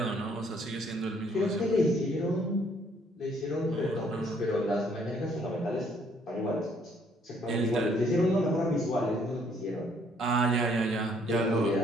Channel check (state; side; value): normal; both; correlation 0.65